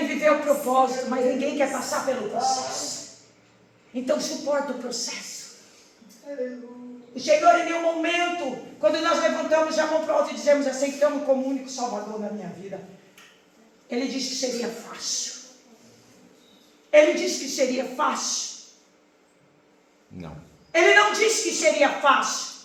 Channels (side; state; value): both; identical; correlation 1.00